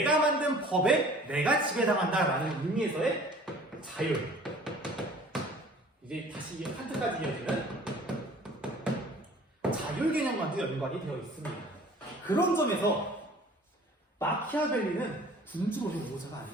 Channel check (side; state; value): both; normal; correlation 0.49